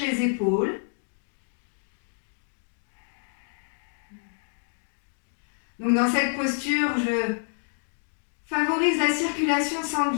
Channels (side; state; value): right; silent; 59 dB below the other